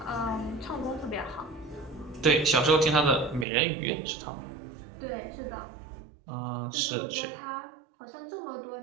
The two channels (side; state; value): left; drops out; at 3.5 s